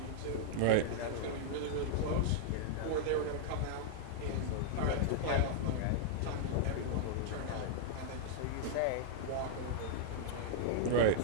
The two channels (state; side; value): different; both; correlation -0.01